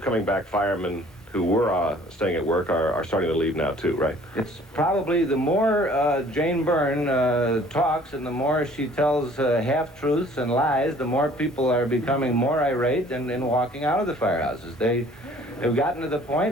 coming back, firemen who were staying at work are starting to leave now too, right? It's probably the more Jane Byrne talks and the more she tells half-truths and lies, the more people are becoming more irate and walking out of the firehouses. They have gotten to the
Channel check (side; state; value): both; normal; correlation 0.54